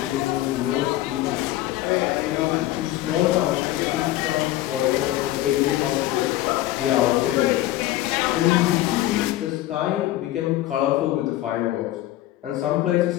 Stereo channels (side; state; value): right; quieter; 15.2 dB